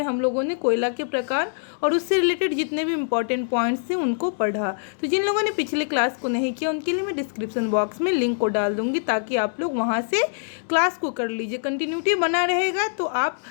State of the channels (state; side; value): silent; right; digital silence